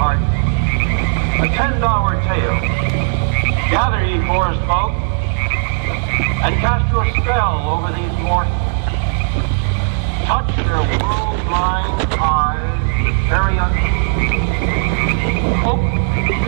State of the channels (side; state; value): left; silent; digital silence